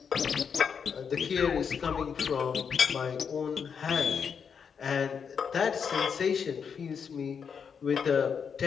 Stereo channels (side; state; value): right; quieter; 6.6 dB